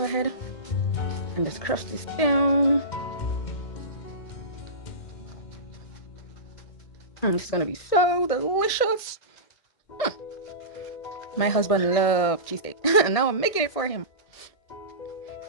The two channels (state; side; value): late; right; 1.6 ms